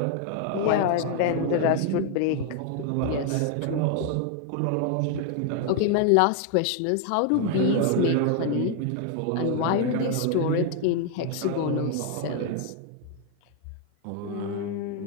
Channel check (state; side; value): different; both; correlation 0.00